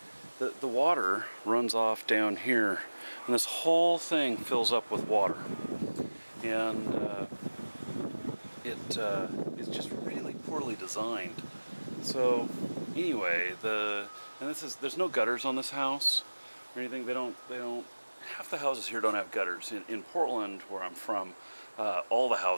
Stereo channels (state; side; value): inverted; both; correlation -1.00